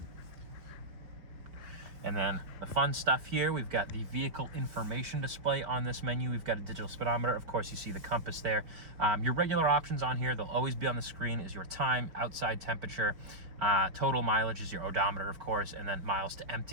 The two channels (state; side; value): late; left; 4.5 ms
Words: And then the fun stuff here, we've got the vehicle information display on this menu. We've got a digital speedometer. Of course, you see the compass there. Your regular options on here, they'll always be on the screen, is your time, outside temperature, total mileage is your odometer, of course, and then miles to